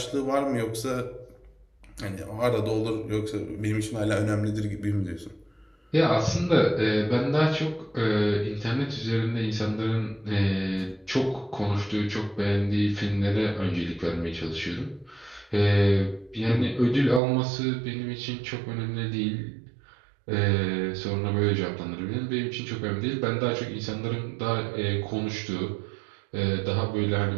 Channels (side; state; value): left; drops out; at 17.2 s